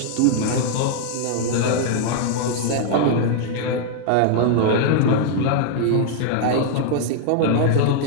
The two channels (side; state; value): both; different; correlation 0.00